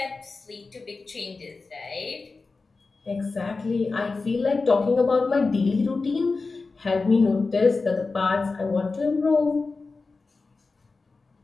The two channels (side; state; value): right; quieter; 4.0 dB